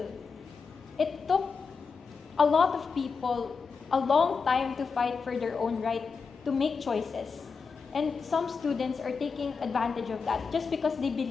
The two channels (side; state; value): right; quieter; 5.2 dB